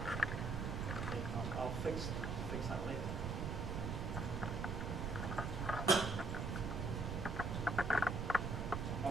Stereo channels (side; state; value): right; noise; rumble, 2 dB below the sound